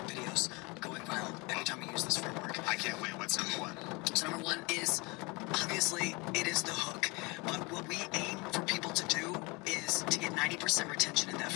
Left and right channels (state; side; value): quieter; right; 26.8 dB